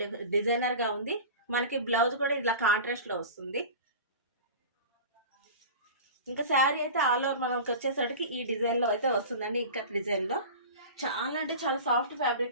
డిజైనర్గా ఉంది. మనకి బ్లౌజ్ కూడా ఇలా కాంట్రాస్ట్లో వస్తుంది. ఇంకా శారీ అయితే ఆల్ ఓవర్ మనకి వచ్చేసరికి ఈ డిజైన్లో అయితే వస్తుందండి. ఇంకా డిజైన్లో చాలా అంటే చాలా సాఫ్ట్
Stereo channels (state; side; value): inverted; both; correlation -0.34